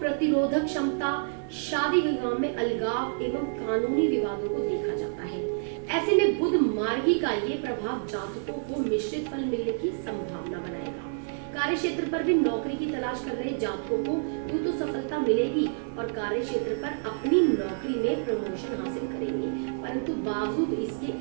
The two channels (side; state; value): left; silent; 59 dB below the other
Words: क्षमता, शादी विवाह में अलगाव एवं कानूनी विवादों को देखा जाता है। ऐसे में बुध मार्गी का ये प्रभाव जातकों को मिश्रित फल मिलने की संभावना बनाएगा। कार्य क्षेत्र पर भी नौकरी की तलाश कर रहे जातकों को यूं तो सफलता मिलेगी और कार्य क्षेत्र पर अपनी नौकरी में प्रमोशन हासिल करेंगे, परंतु बावजूद इसके